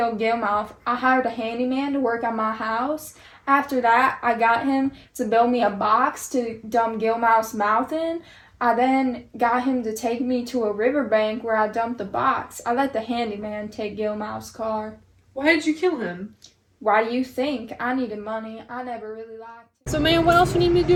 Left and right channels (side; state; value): both; identical; correlation 1.00